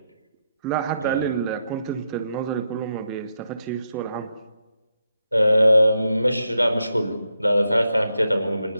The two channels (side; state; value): both; inverted; correlation -0.83